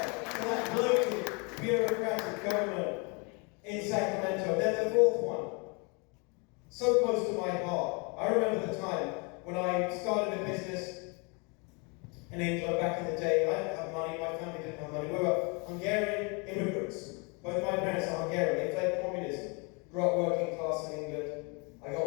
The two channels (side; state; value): right; quieter; 31.9 dB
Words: to that bloated, bureaucratic government in Sacramento. Then the fourth one. So close to my heart. I remember the time when I started a business in England back in the day. I didn't have money, my family didn't have money. We were Hungarian immigrants. Both my parents are Hungarian. They fled communism. Grew up working class in England. I